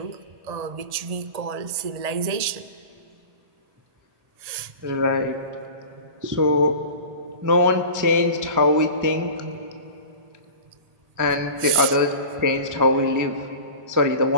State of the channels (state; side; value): late; left; 1.8 ms